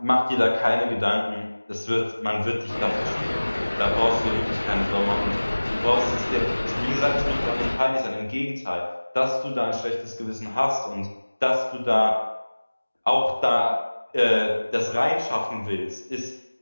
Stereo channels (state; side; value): inverted; both; correlation -1.00